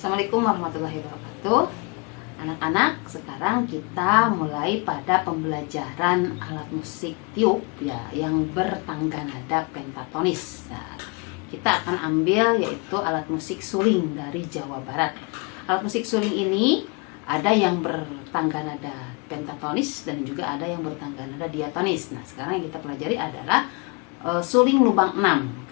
Assalamualaikum warahmatullahi wabarakatuh. Anak-anak, sekarang kita mulai pada pembelajaran alat musik tiup ya yang bertangga nada pentatonis. Nah, kita akan ambil yaitu alat musik suling dari Jawa Barat. Alat musik suling ini ada yang bertangga nada pentatonis dan juga ada yang bertangga nada diatonis. Nah, sekarang yang kita pelajari adalah suling lubang 6.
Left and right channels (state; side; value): quieter; right; 31.6 dB